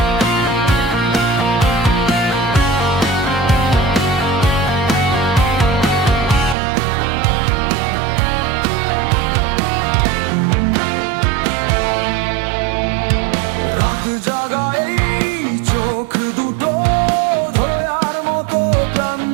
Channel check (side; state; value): left; drops out; at 6.6 s